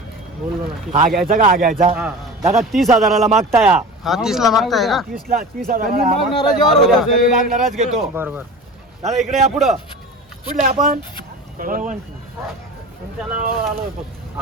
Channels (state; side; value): normal; both; correlation 0.34